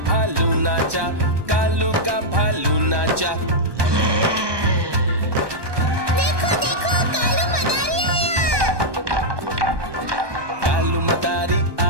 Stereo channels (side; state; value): left; late; 1.2 ms